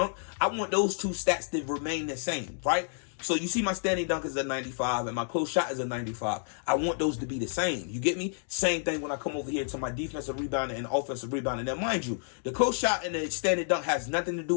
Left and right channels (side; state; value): right; silent; digital silence